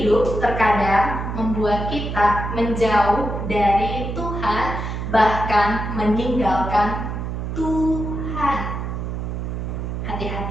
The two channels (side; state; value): right; noise; hum, 4 dB below the sound